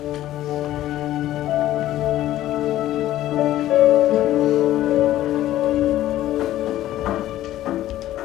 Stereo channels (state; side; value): quieter; right; 13.9 dB